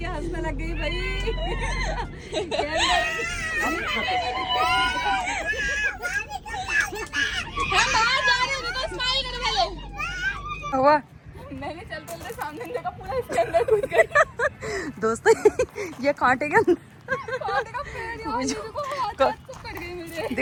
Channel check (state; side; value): identical; both; correlation 1.00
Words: हंसने लग गई भाई। हम बाहर जा रहे हैं, देखो स्माइल करो पहले। हुआ मैंने चलते सामने देखा, पूरा इसके अंदर घुस गया। दोस्तों ये कांटे के अंदर कांटे का पेड़ यार, देखो हाथ कट गई मुझे।